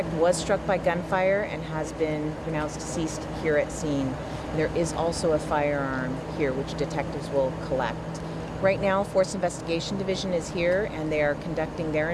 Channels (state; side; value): identical; both; correlation 1.00